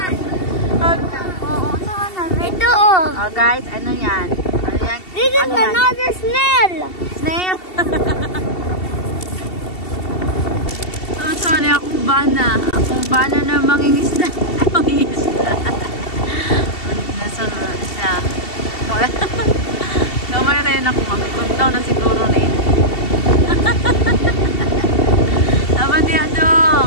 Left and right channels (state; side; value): late; right; 2.7 ms